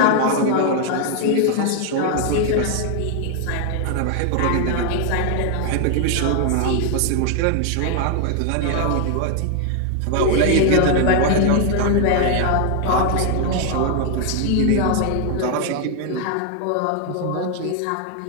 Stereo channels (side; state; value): both; different; correlation 0.00